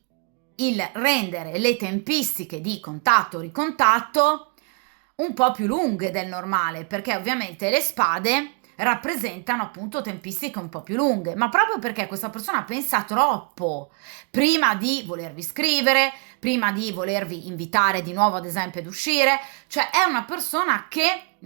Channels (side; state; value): left; quieter; 35.4 dB